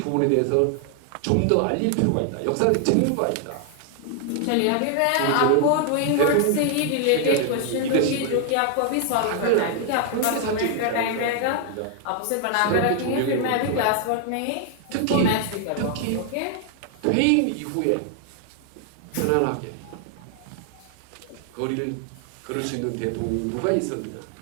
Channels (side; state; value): both; different; correlation 0.00